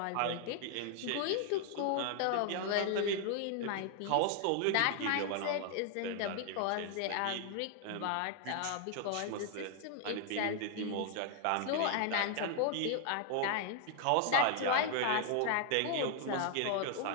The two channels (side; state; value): both; different; correlation 0.00